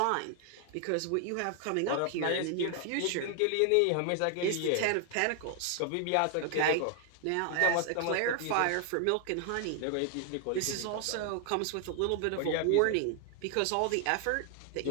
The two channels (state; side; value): different; both; correlation 0.00